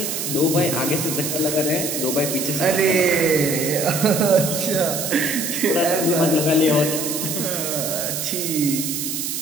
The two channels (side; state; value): right; noise; hiss, 3 dB below the sound